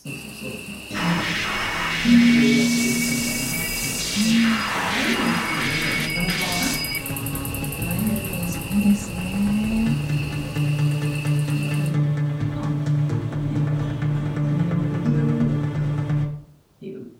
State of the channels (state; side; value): identical; both; correlation 1.00